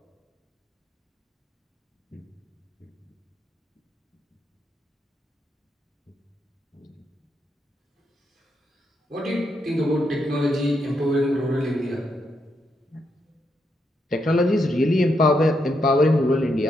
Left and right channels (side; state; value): both; normal; correlation 0.80